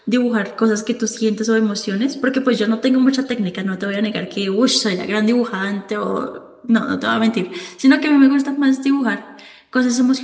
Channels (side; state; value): both; identical; correlation 1.00